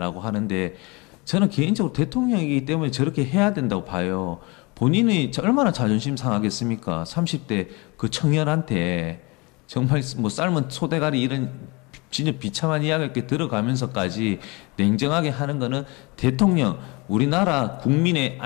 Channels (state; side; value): quieter; right; 27.0 dB